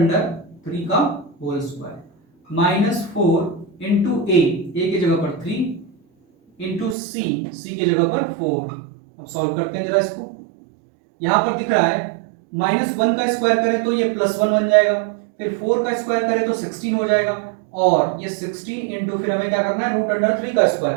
का होल स्क्वायर -4 × a की जगह पर 3 × c की जगह पर 4। अब सॉल्व करते हैं जरा इसको। यहाँ पर दिख रहा है -1 का स्क्वायर करें तो ये +1 बन जाएगा, फिर 4 का स्क्वायर करें तो 16 हो जाएगा, और ये 16 इंटू फिर हमें क्या करना है √3 का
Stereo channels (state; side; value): drops out; left; at 7.0 s